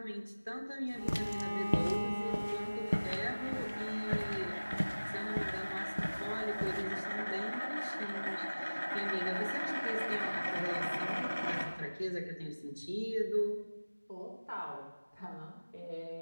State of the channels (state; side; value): inverted; both; correlation -1.00